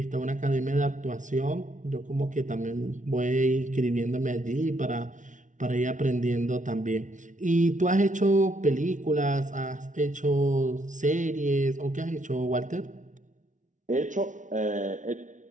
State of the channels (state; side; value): late; left; 0.37 ms